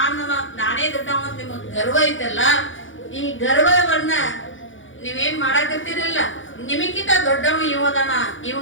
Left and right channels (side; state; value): right; late; 0.56 ms